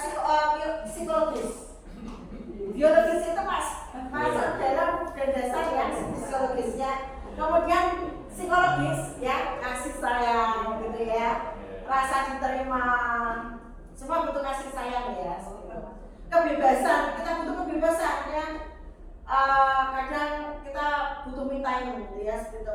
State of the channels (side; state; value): both; identical; correlation 1.00